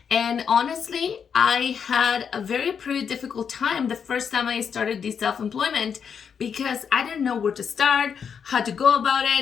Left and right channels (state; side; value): quieter; right; 7.0 dB